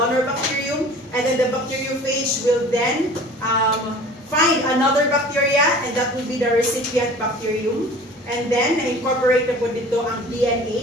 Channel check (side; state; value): both; normal; correlation 0.44